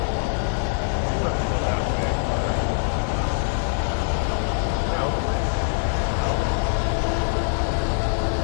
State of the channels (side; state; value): right; silent; digital silence